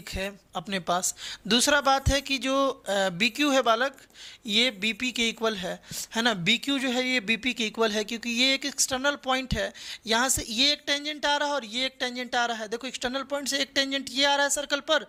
है अपने पास। दूसरा बात है कि जो बी क्यू है बालक, ये बी पी के इक्वल है ना। बी क्यू जो है ये बी पी के इक्वल है, क्योंकि ये एक एक्सटर्नल पॉइंट है। यहाँ से ये एक टेंजेंट आ रहा है और ये एक टेंजेंट आ रहा है। देखो एक्सटर्नल पॉइंट से एक टेंजेंट ये आ रहा है सर्कल पर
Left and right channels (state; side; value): identical; both; correlation 1.00